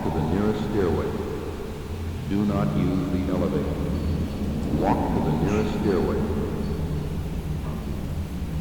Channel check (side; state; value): both; identical; correlation 1.00